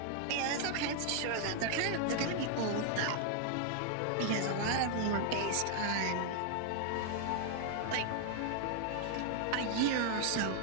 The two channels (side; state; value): both; different; correlation 0.00